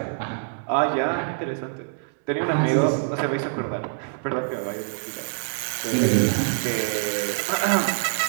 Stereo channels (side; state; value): left; silent; digital silence